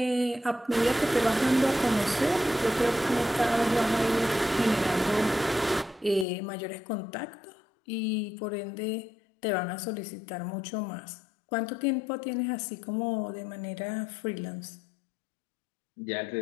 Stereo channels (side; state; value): right; drops out; at 6.2 s